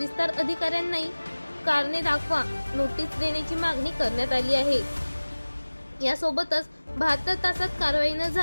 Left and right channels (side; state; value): both; inverted; correlation -1.00